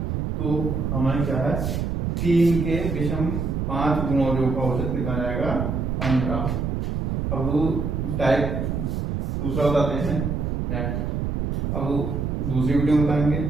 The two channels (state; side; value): noise; right; rumble, 1 dB below the sound